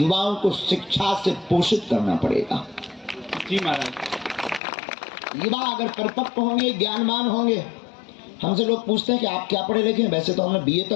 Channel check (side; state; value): right; drops out; at 4.6 s